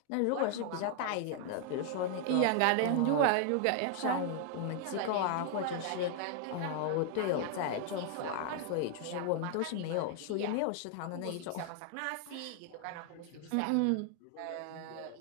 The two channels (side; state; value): both; different; correlation 0.00